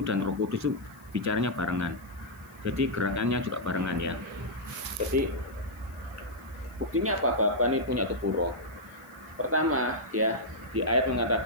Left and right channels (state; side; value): noise; left; hiss, 29 dB below the sound